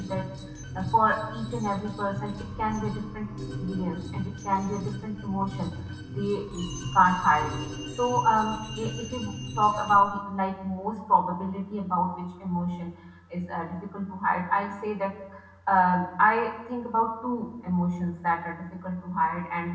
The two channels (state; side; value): identical; both; correlation 1.00